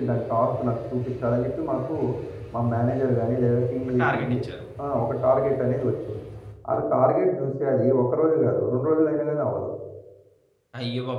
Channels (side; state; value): both; identical; correlation 1.00